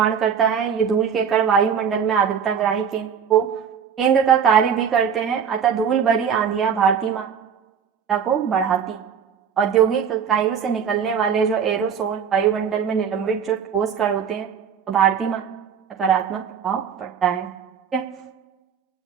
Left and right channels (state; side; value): quieter; left; 7.4 dB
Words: करता है। ये धूल के कण वायुमंडल में आर्द्रता ग्राही केंद्र का कार्य भी करते हैं, अतः धूल भरी आंधियां भारतीय मात्रा को बढ़ाती। औद्योगिक इकाइयों से निकलने वाले जो एरोसोल वायुमंडल में निलंबित जो ठोस कण होते हैं, तो भारतीय सकारात्मक प्रभाव पड़ता है। ठीक है,